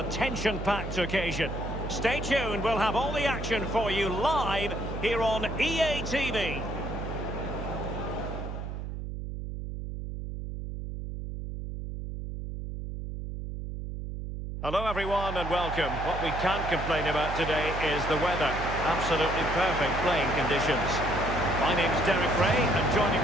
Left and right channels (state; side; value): noise; right; hum, 6 dB below the sound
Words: tension-packed occasion. Stay tuned, we'll have all the action for you live here on EA TV. Hello everyone and welcome. What we can't complain about today is the weather. Absolutely perfect playing conditions. My name's Derek Ray, and joining